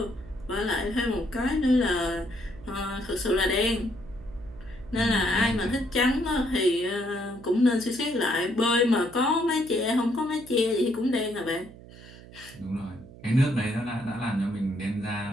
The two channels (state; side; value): noise; right; hum, 18 dB below the sound